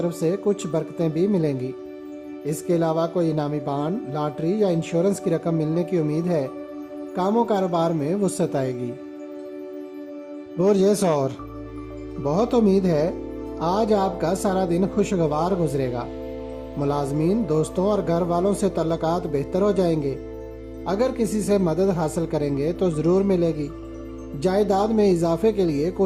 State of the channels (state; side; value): identical; both; correlation 1.00